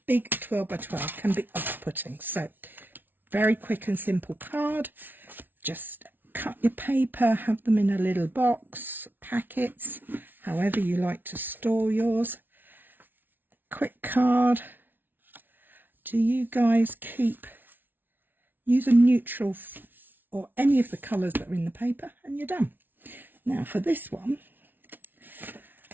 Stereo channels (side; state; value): left; late; 0.093 ms